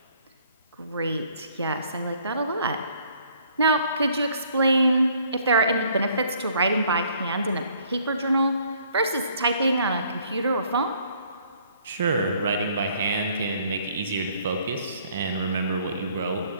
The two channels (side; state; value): both; inverted; correlation -0.62